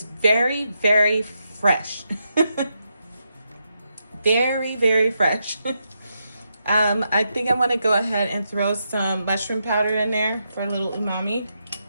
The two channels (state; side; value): inverted; both; correlation -0.83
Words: very, very fresh. Very, very fresh. I think I want to go ahead and throw some mushroom powder in there for a little umami.